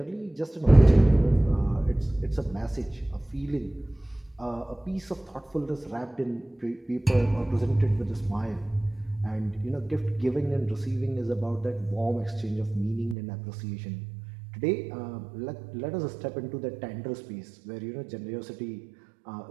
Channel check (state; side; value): drops out; left; at 13.2 s